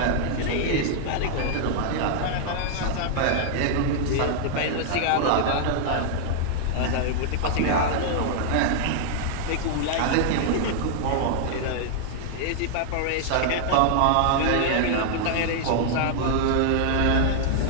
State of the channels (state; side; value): different; both; correlation -0.01